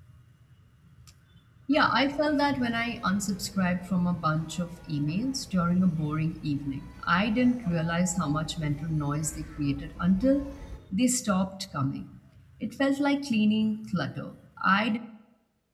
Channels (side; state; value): both; identical; correlation 1.00